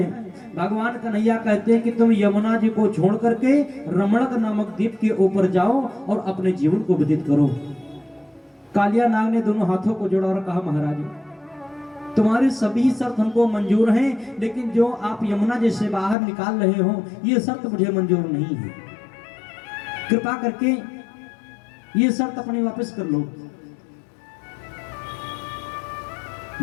भगवान कन्हैया कहते हैं कि तुम यमुना जी को छोड़ करके रमणक नामक द्वीप के ऊपर जाओ और अपने जीवन को व्यतीत करो। कालिया नाग ने दोनों हाथों को जोड़ा और कहा महाराज तुम्हारी सभी शर्त हमको मंजूर हैं, लेकिन जो आप यमुना जी से बाहर निकाल रहे हो ये शर्त मुझे मंजूर नहीं है। कृपा करके ये शर्त अपनी वापस कर लो।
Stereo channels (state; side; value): drops out; right; at 16.2 s